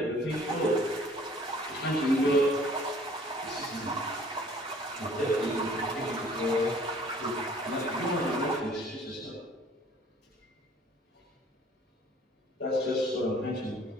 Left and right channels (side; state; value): both; normal; correlation 0.54